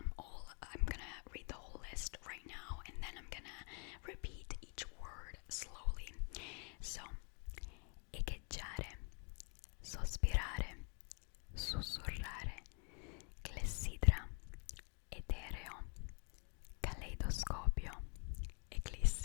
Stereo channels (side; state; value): right; quieter; 38.2 dB